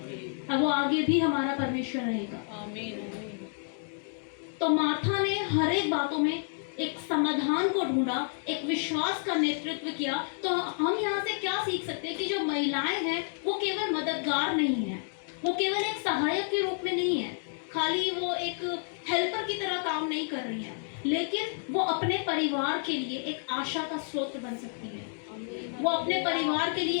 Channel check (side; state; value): right; silent; 58 dB below the other